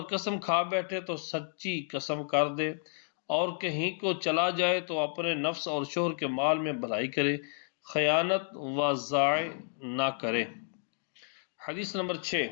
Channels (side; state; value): right; silent; digital silence